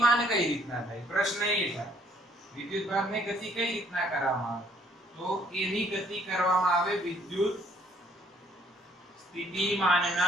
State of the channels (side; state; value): both; normal; correlation 0.64